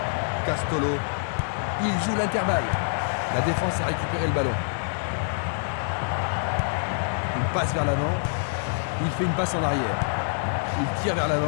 Castolo. Il joue l'intervalle. La défense a récupéré le ballon. Il passe vers l'avant. Il fait une passe en arrière. Il tire vers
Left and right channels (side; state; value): right; silent; digital silence